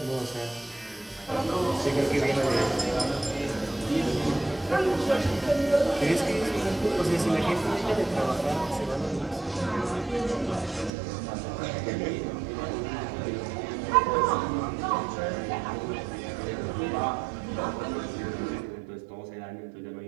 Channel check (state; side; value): drops out; left; at 10.9 s